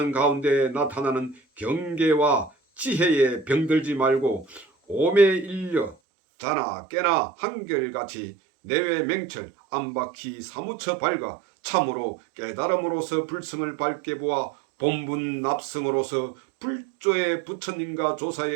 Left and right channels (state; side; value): drops out; left; at 6.0 s